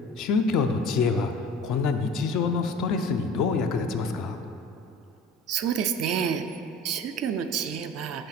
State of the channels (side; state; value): both; normal; correlation 0.41